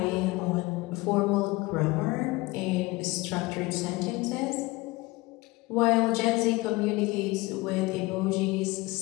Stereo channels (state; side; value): quieter; right; 22.2 dB